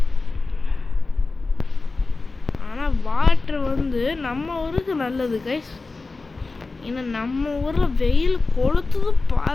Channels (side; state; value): right; quieter; 3.7 dB